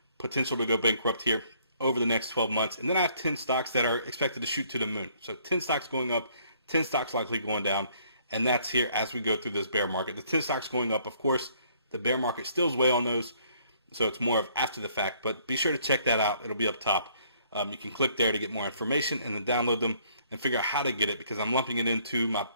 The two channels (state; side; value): inverted; both; correlation -0.63